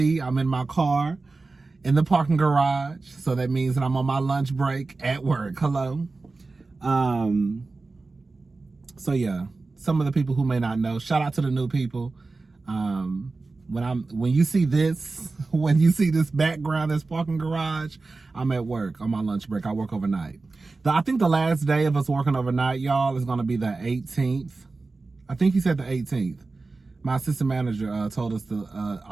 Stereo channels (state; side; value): quieter; left; 3.7 dB